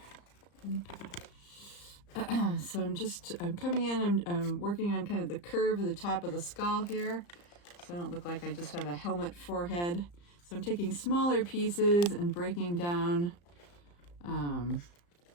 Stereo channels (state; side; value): late; right; 35 ms